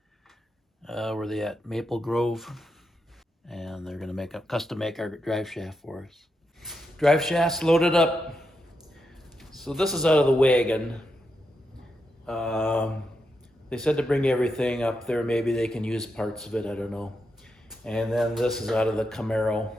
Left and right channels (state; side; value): normal; both; correlation 0.85